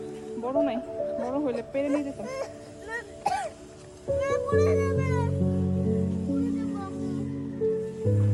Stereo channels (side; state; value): both; identical; correlation 1.00